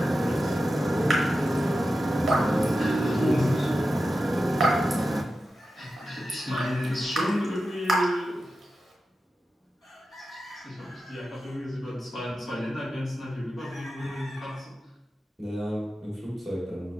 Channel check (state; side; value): normal; both; correlation 0.92